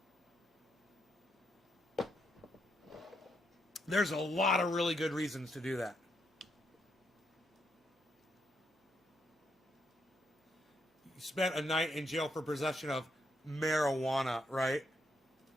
There's a lot of really good reasons to do that. You spent a night in jail for possession of marijuana, right?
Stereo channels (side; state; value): both; normal; correlation 0.78